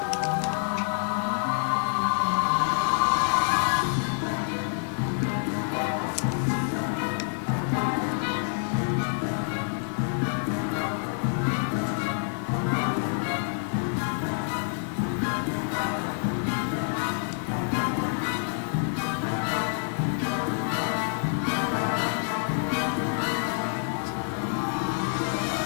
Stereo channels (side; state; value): right; silent; 60 dB below the other